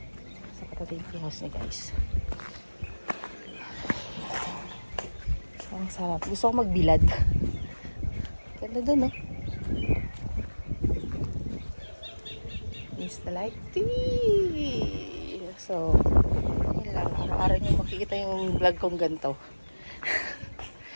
Sa katabi ng tea house niya guys. Ang sarap. Gusto ko magbilad. Ganda dun, no? It's the light tea. So, yun lang. Araw-araw nyo makikita yung vlog kong ganito.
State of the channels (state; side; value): inverted; both; correlation -1.00